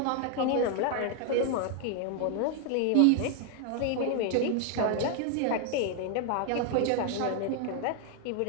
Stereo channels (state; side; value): different; both; correlation 0.00